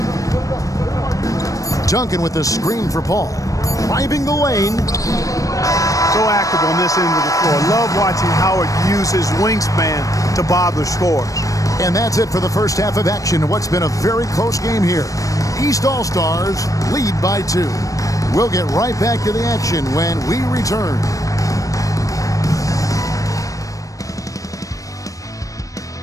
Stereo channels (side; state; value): right; late; 0.16 ms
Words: Duncan with the screen for Paul. Driving the lane. So active on this end of the floor. Love watching Howard use his wingspan to bother scores. And that's it for the first half of action in what's been a very close game here. East All-Stars lead by 2. We'll get right back to the action when we return.